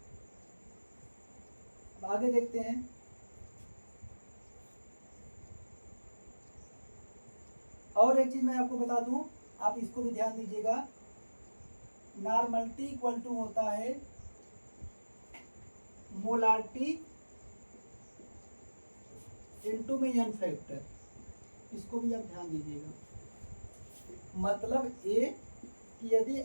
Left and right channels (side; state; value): both; inverted; correlation -1.00